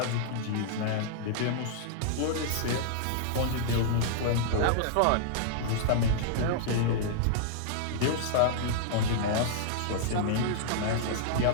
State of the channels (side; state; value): both; different; correlation -0.01